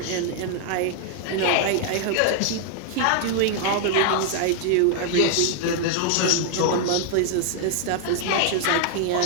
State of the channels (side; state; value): both; different; correlation -0.01